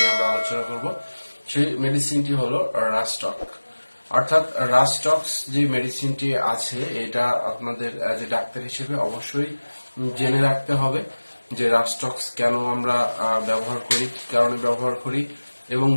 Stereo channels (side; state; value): both; inverted; correlation -1.00